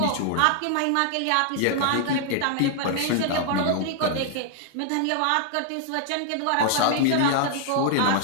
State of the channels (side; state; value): both; different; correlation 0.00